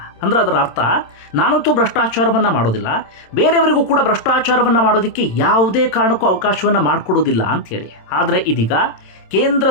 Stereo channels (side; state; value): right; late; 27 ms